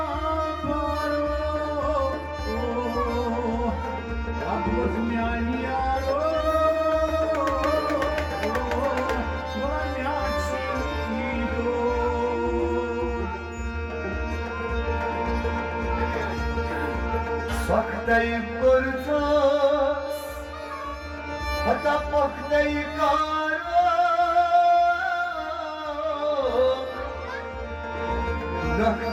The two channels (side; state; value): both; identical; correlation 1.00